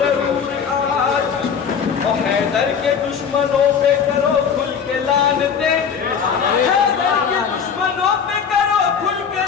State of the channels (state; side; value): quieter; right; 6.9 dB